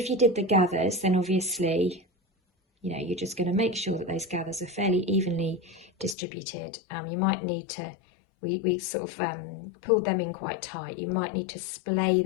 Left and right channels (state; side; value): drops out; right; at 6.2 s